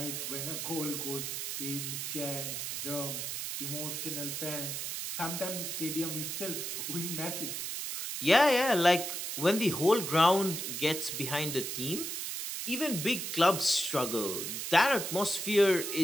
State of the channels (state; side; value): noise; right; hiss, 4 dB below the sound